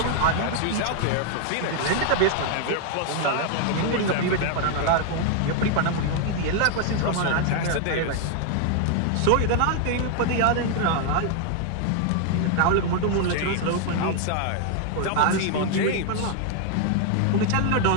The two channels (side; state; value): both; different; correlation 0.00